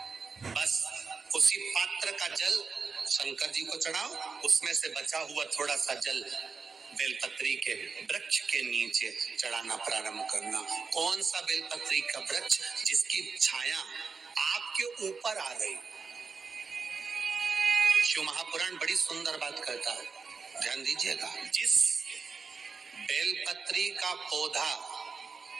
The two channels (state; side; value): quieter; left; 5.0 dB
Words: बस उसी पात्र का जल शंकर जी को चढ़ाओ, उसमें से बचा हुआ थोड़ा सा जल बेलपत्री के वृक्ष के नीचे चढ़ाना प्रारंभ करना। कौन सा बेलपत्री का वृक्ष? जिसकी छाया आपके ऊपर आ गई। शिव महापुराण बड़ी सुंदर बात कहता है, ध्यान दीजिएगा। जिस बेलपत्री का पौधा